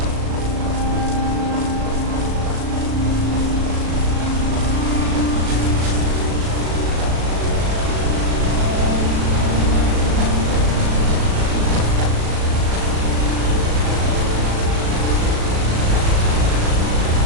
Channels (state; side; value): late; left; 37 ms